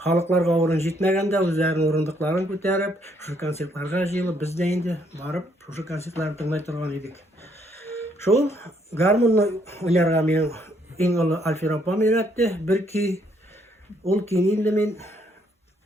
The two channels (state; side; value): normal; both; correlation 0.69